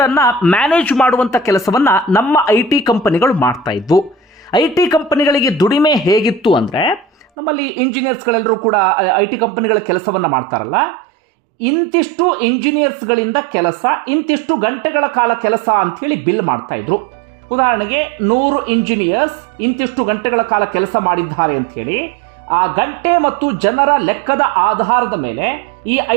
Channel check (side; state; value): left; drops out; at 7.2 s